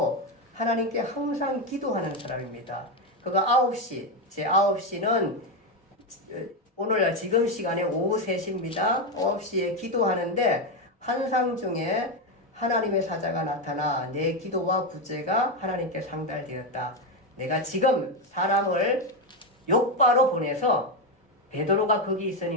하나님께 항상 기도하는 사람입니다. 그가 9시, 제 9시는 오늘날 지금 시간에 오후 3시입니다. 9시에 기도하는데 환상 중에 하나님의 사자가 나타나 내 기도와 구제가 하나님께 상달되었다. 내가 지금 사람을 욥바로 보내서 베드로가 거기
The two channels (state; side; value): normal; both; correlation 0.09